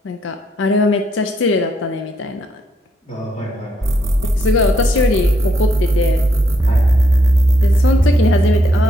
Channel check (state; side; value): normal; both; correlation 0.75